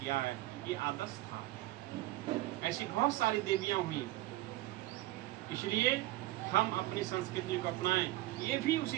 है। ये आदर्श था। ऐसी बहुत सारी देवियां हुई, इसलिए हम अपनी संस्कृति को अपनाएं। ये भी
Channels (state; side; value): quieter; left; 17.2 dB